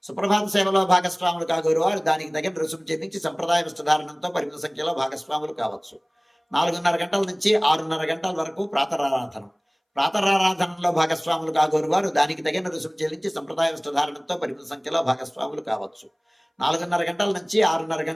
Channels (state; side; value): identical; both; correlation 1.00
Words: సుప్రభాత సేవలో భాగస్వాములు కాగోరు వారు దానికి తగిన రుసుము చెల్లించి సంప్రదాయ వస్త్రధారణంతో పరిమిత సంఖ్యలో భాగస్వాములు కావచ్చు. 4:30 గంటల నుంచి 6:30 గంటల వరకు ప్రాతరారాధనం. ప్రాతరారాధనలో భాగస్వాములు కాగోరు వారు దానికి తగిన రుసుము చెల్లించి సంప్రదాయ వస్త్రధారణంతో పరిమిత సంఖ్యలో భాగస్వాములు కావచ్చు. 4:30 గంటల నుంచి 6:30